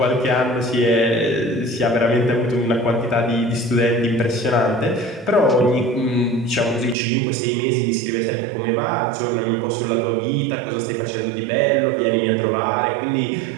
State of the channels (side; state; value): left; drops out; at 7.0 s